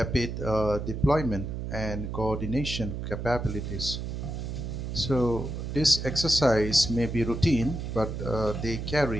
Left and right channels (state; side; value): noise; right; hum, 5 dB below the sound